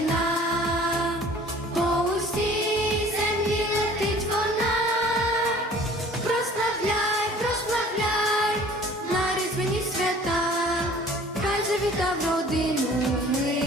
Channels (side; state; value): both; normal; correlation 0.49